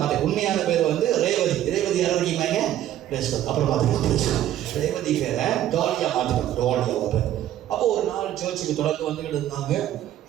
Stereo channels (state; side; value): quieter; left; 12.2 dB